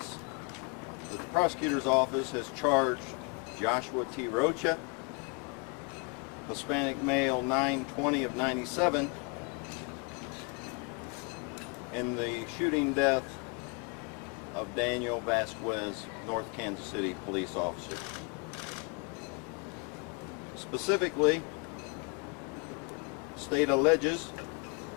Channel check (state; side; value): quieter; right; 32.9 dB